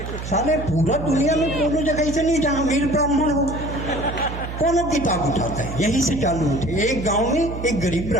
साले पूरा दुनिया में कोनो जगह से नहीं जहां अमीर ब्राह्मण हो, कोनो किताब उठाता है, यही से चालू होते। एक गांव में एक गरीब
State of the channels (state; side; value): noise; right; hum, 8 dB below the sound